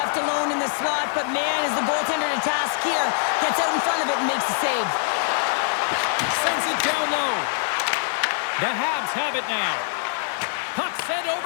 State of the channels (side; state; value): right; silent; digital silence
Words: alone in the slot, but man, is the goaltender to task here. Gets out in front of it and makes the save. Sends it down low. The Habs have it now. Puck sent